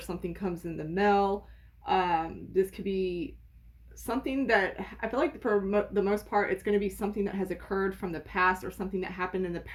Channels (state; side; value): identical; both; correlation 1.00